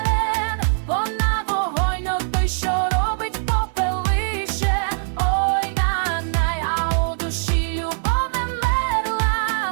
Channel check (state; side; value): silent; left; 57 dB below the other